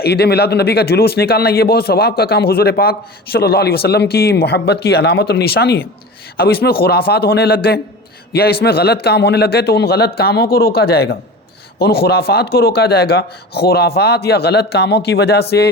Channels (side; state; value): both; normal; correlation 0.33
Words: عید میلاد النبی کا جلوس نکالنا یہ بہت ثواب کا کام، حضور پاک صلی اللہ علیہ وسلم کی محبت کی علامت اور نشانی ہے۔ اب اس میں خرافات ہونے لگ گئے یا اس میں غلط کام ہونے لگ گئے تو ان غلط کاموں کو روکا جائے گا، ان خرافات کو روکا جائے گا۔ خرافات یا غلط کاموں کی وجہ سے